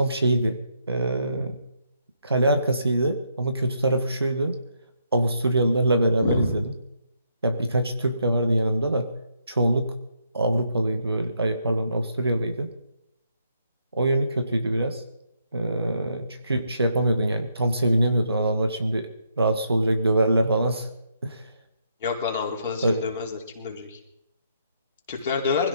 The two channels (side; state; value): both; inverted; correlation -0.75